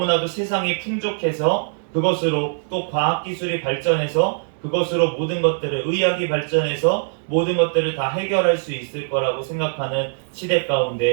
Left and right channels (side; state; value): left; silent; 65 dB below the other